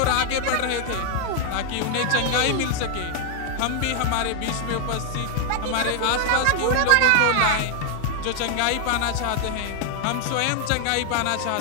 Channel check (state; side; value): different; both; correlation 0.00